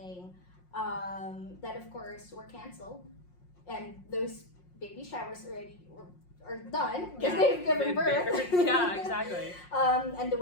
that of course were canceled, and those baby showers are done because they've given birth. Yeah, exactly. And the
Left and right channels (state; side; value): late; right; 5.6 ms